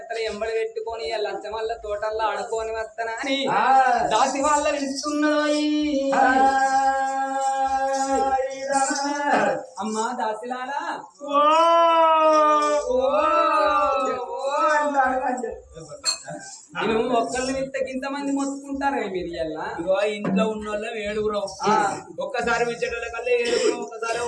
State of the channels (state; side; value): identical; both; correlation 1.00